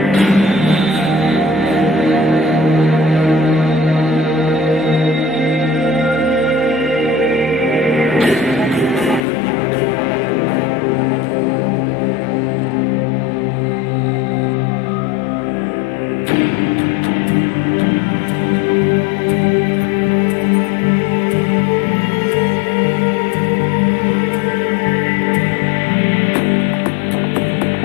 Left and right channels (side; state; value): right; drops out; at 9.2 s